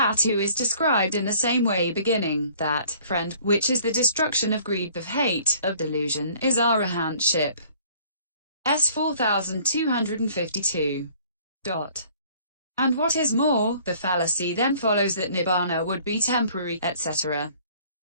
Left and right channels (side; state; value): both; inverted; correlation -0.55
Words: who is described in the same way beginning, that, friend, which is the destruction of greed, of hate, of delusion, is arahantship. S 4252. And what is more, the fallacy then follows that Nibbana would be temporary, etc.